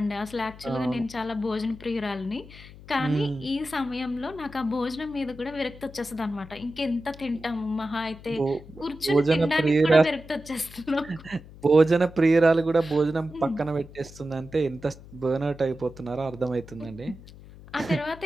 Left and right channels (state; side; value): noise; left; hum, 18 dB below the sound